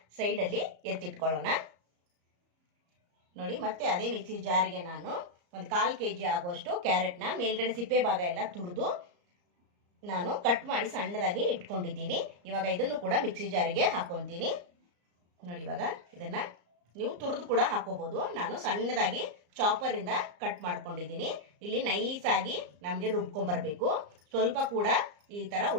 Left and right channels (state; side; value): late; left; 34 ms